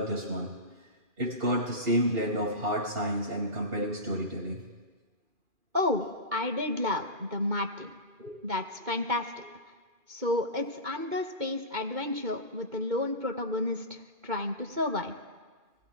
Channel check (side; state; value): left; late; 2.4 ms